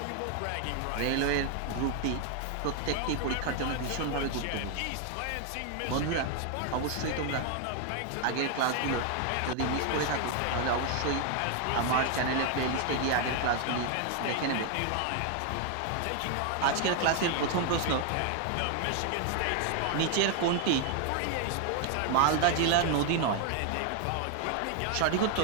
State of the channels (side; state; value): both; different; correlation 0.00